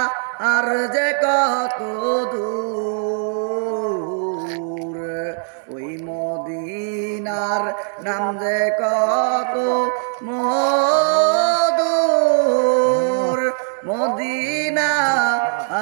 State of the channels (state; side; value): silent; left; digital silence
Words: আর যে কত দূর, ওই মদিনার নাম যে কত মধুর, মদিনা